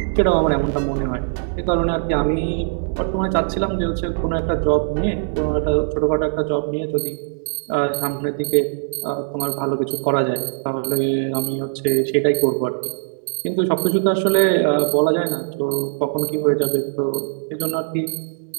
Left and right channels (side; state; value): left; silent; digital silence